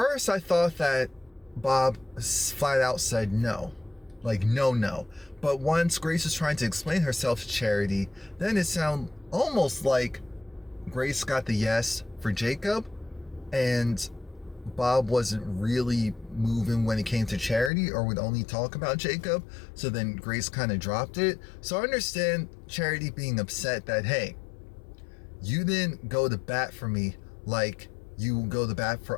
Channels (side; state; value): right; drops out; at 17.7 s